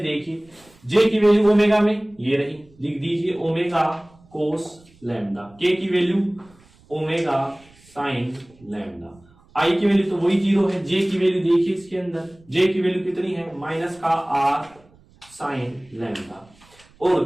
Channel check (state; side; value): noise; right; rumble, 29 dB below the sound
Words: देखिए, जे की वैल्यू ओमेगा में ये रही, लिख दीजिए ओमेगा कोस लैम्डा। के की वैल्यू ओमेगा साइन लैम्डा। आई की वैल्यू तो वही 0 है। जे की वैल्यू देखिए इसके अंदर, जे की वैल्यू कितनी है, माइनस का आर साइन लैम्डा, और